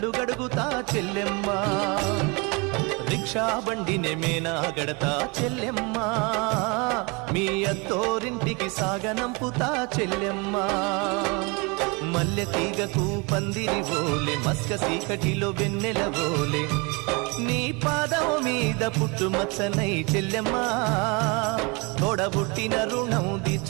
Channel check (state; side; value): quieter; left; 29.3 dB